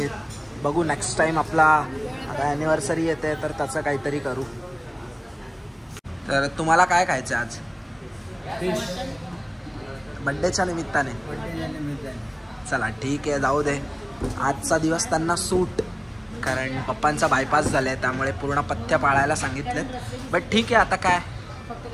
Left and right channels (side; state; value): both; identical; correlation 1.00